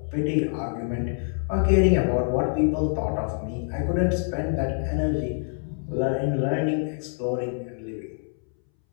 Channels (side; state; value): right; silent; 61 dB below the other